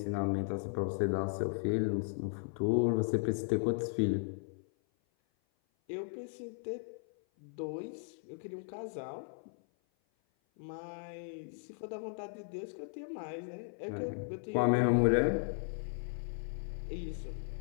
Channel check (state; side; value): silent; right; 54 dB below the other